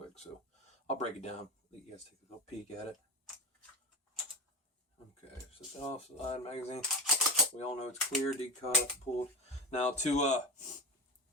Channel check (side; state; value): both; normal; correlation 0.24